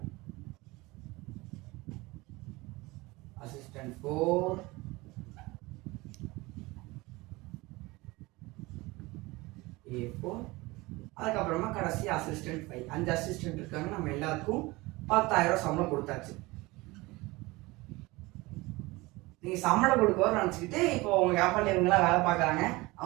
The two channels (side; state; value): left; quieter; 22.1 dB